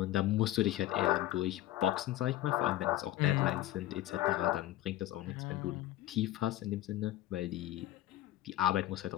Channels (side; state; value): right; quieter; 14.8 dB